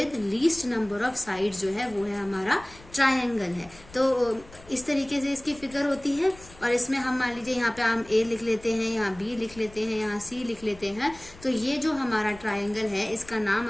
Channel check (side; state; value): left; noise; rumble, 21 dB below the sound